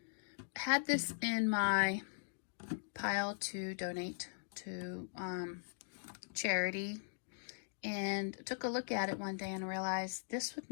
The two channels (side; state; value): right; silent; digital silence